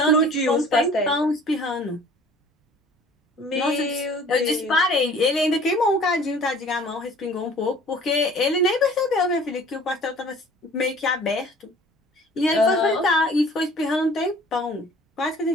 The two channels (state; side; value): normal; both; correlation 0.50